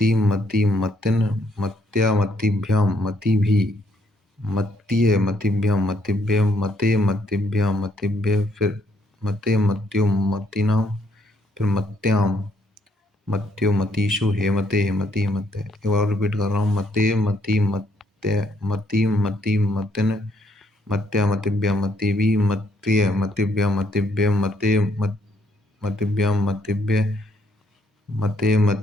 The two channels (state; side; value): normal; both; correlation 0.70